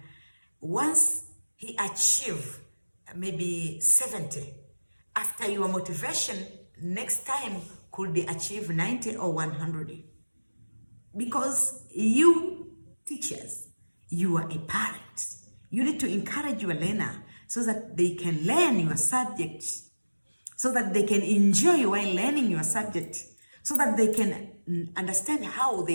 Once he achieves maybe 70, after your motivation, next time could achieve 90 or 100. Because you teachers, you are a parent. You need to encourage your learner so that they can learn your subject, so that they can enjoy while learning your subject, so that they can understand how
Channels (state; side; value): inverted; both; correlation -1.00